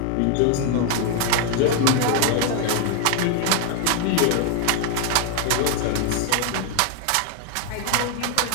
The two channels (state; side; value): different; both; correlation 0.00